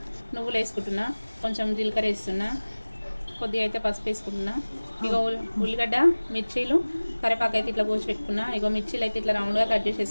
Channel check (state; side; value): inverted; both; correlation -1.00